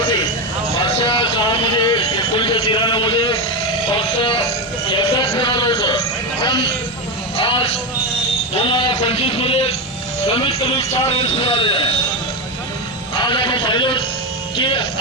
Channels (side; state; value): both; normal; correlation 0.13